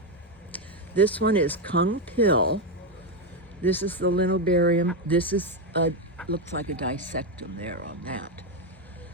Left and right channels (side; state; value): both; normal; correlation 0.07